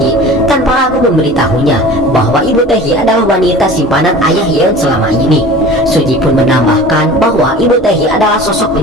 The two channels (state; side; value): normal; both; correlation 0.40